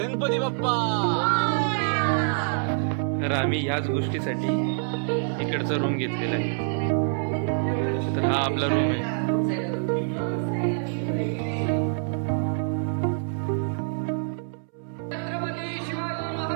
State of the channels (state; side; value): silent; left; 61 dB below the other